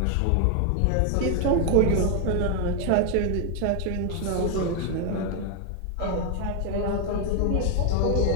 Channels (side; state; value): both; different; correlation 0.01